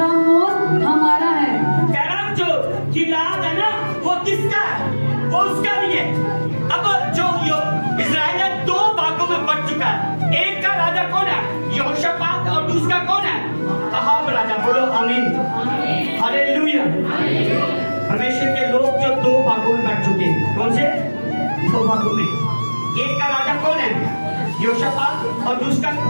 गिलाद है ना, वो किसका है? वो उसका नहीं है। अब जो इजराइल है दो भागों में बंट चुका है। एक का राजा कौन है? यहोशापात, और दूसरा कौन है? अहाब राजा। बोलो आमीन, हालेलुया। परमेश्वर के लोग जो दो भागों में बंट चुके हैं। कौन से दो भागों में? एक का राजा कौन है? यहोशापात, और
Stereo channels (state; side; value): inverted; both; correlation -1.00